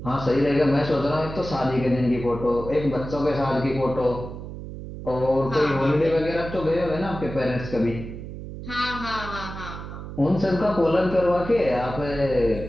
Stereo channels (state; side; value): noise; right; hum, 10 dB below the sound